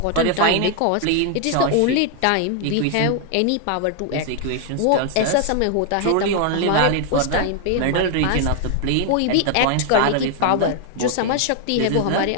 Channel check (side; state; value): both; different; correlation 0.00